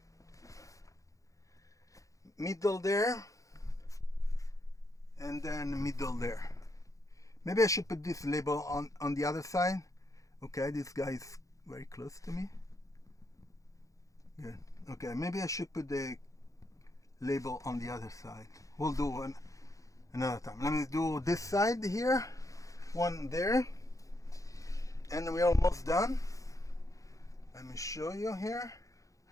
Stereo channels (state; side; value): late; right; 0.16 ms